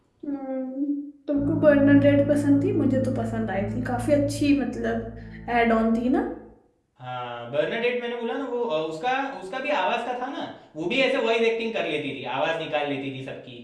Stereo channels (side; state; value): both; identical; correlation 1.00